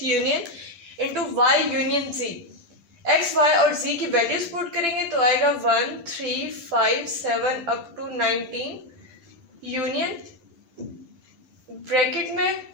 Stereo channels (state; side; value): late; left; 10 ms